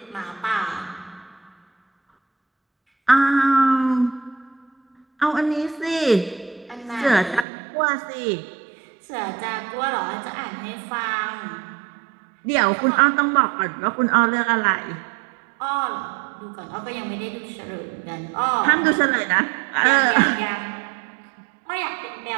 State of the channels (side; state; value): left; drops out; at 7.5 s